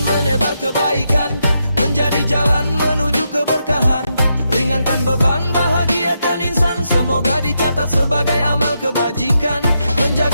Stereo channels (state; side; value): inverted; both; correlation -0.82